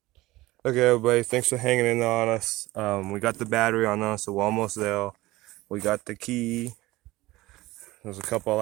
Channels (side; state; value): left; quieter; 18.8 dB